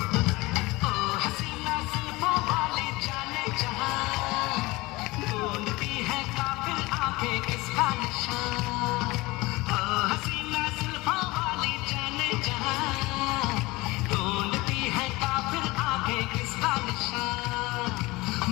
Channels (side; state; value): right; quieter; 21.8 dB